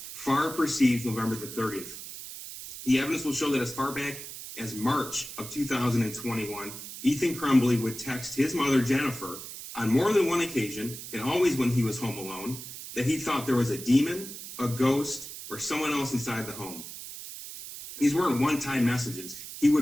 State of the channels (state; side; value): noise; right; hiss, 11 dB below the sound